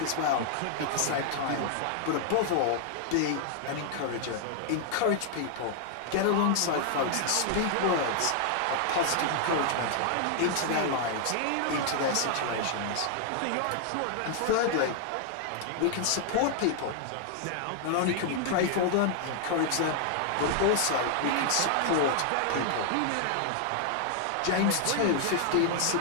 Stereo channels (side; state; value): both; different; correlation 0.00